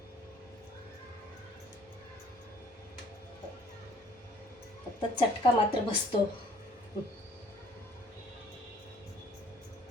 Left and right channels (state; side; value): normal; both; correlation 0.56